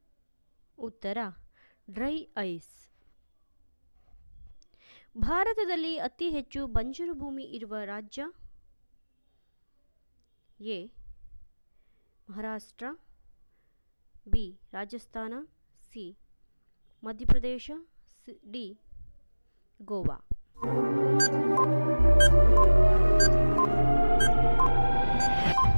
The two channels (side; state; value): both; inverted; correlation -1.00